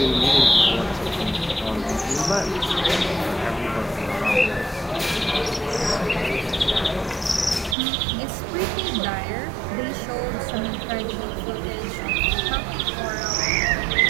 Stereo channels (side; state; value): left; drops out; at 7.8 s